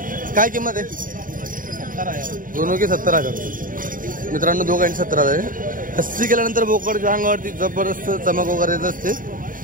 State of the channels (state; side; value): late; left; 0.39 ms